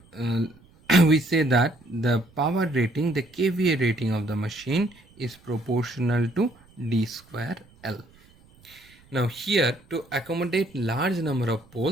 we say that the power rating, the kVA rating of the machine is proportional to d square L. Now here, to accommodate large number of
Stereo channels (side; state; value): right; noise; rumble, 28 dB below the sound